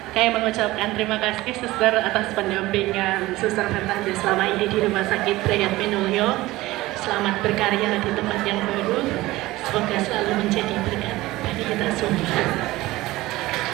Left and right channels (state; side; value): quieter; left; 18.3 dB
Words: Saya mengucapkan terima kasih Suster atas pendampingan Suster Fernanda selama ini di Rumah Sakit Brayat Minulyo. Selamat berkarya di tempat yang baru. Semoga selalu menjadi berkat bagi kita semua.